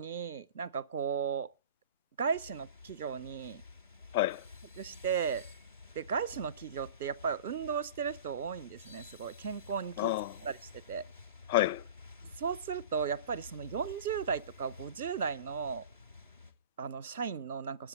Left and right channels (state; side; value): inverted; both; correlation -0.37